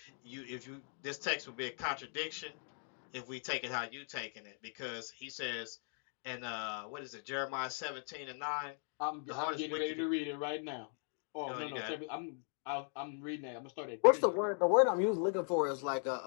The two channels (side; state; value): right; silent; 52 dB below the other